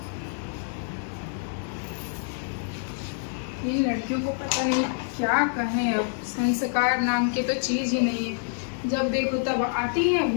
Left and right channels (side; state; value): right; silent; digital silence